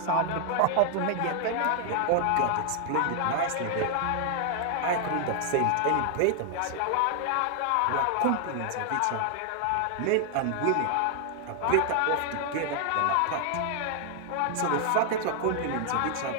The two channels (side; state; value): both; different; correlation 0.00